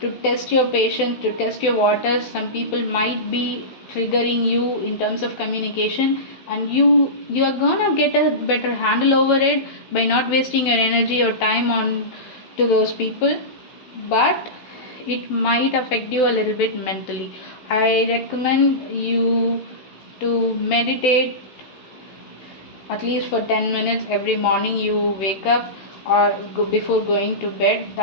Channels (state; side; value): late; right; 16 ms